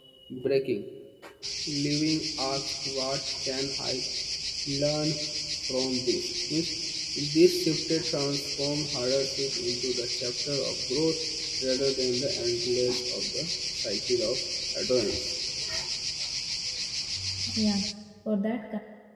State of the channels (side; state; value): both; identical; correlation 1.00